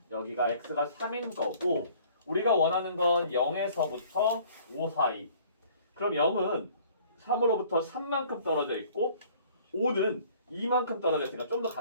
여기가 x가 3인 거고 우리가 원하는 건 0에서부터 5 사이. 그럼 0은 3으로부터 3만큼 떨어져 있고 5는 2만큼 떨어져 있으니까 좀 더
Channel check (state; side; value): inverted; both; correlation -0.54